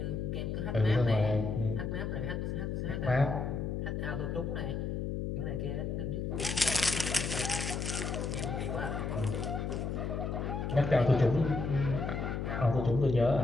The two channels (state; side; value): noise; left; hum, 2 dB below the sound